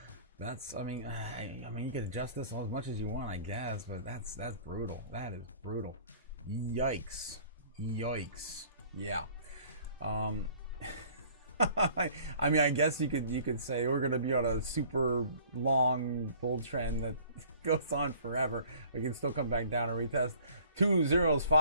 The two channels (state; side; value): inverted; both; correlation -0.53